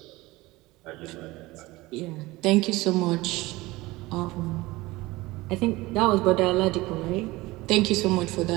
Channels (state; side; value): quieter; left; 20.3 dB